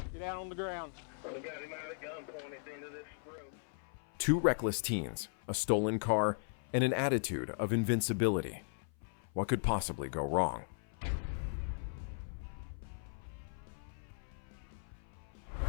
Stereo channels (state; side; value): silent; right; 53 dB below the other